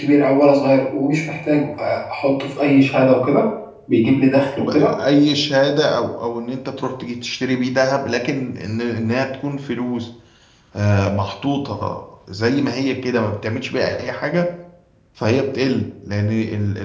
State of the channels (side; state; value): both; identical; correlation 1.00